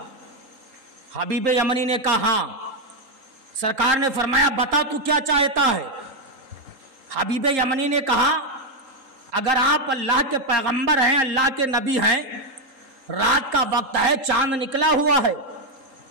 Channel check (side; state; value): left; late; 3.8 ms